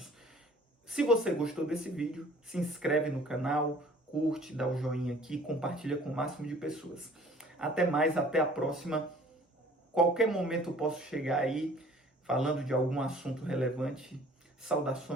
Se você gostou desse vídeo, se inscreve no canal, curte, dá o joinha aqui, compartilha com o máximo de pessoas. Até mais, até a próxima. Qualquer momento eu posso chegar aí falando de algum assunto relevante.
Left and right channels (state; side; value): normal; both; correlation 0.52